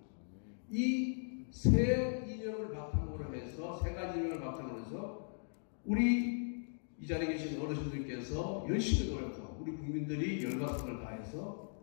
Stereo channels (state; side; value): silent; right; digital silence